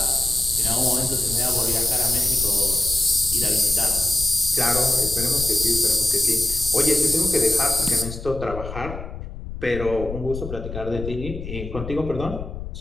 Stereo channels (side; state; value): left; noise; rumble, 9 dB below the sound